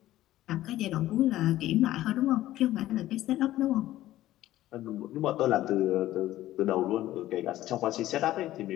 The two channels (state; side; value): quieter; right; 14.7 dB